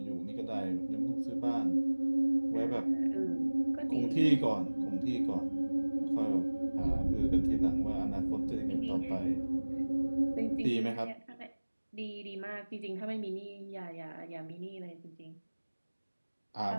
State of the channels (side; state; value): both; inverted; correlation -1.00